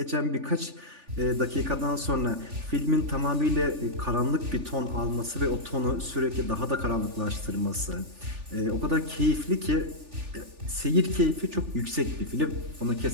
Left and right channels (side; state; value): left; late; 3.4 ms